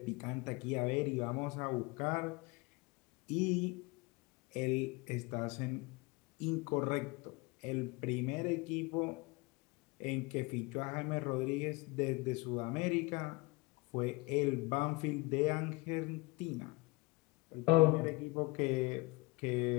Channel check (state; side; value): quieter; right; 24.7 dB